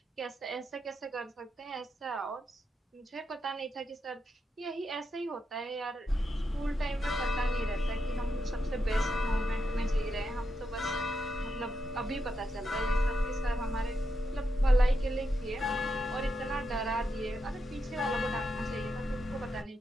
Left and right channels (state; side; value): normal; both; correlation 0.84